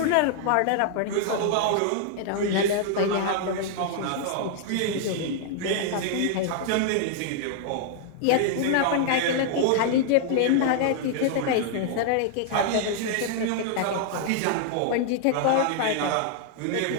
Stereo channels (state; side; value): different; both; correlation -0.01